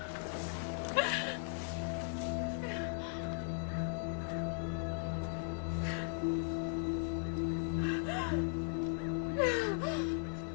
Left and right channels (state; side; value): silent; right; 53 dB below the other